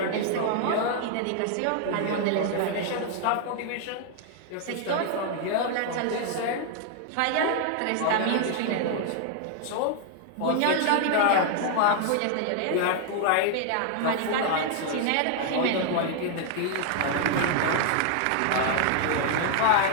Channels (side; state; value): both; different; correlation 0.00